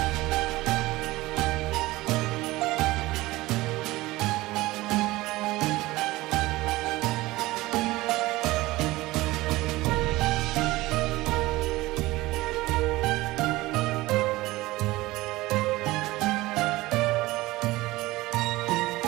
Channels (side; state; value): left; quieter; 19.1 dB